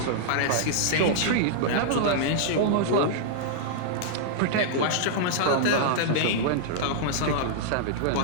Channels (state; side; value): different; both; correlation -0.02